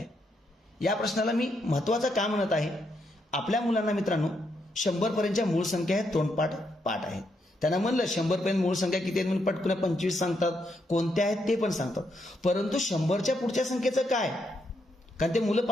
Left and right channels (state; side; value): normal; both; correlation 0.78